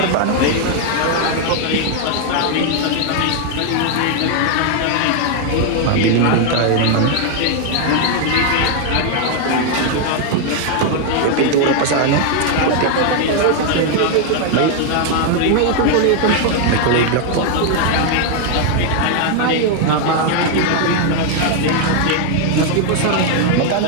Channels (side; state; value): both; different; correlation 0.00